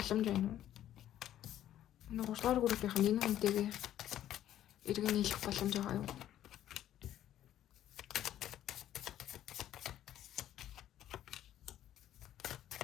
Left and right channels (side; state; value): right; quieter; 11.9 dB